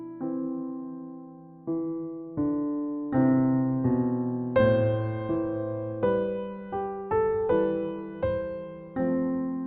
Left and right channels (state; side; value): identical; both; correlation 1.00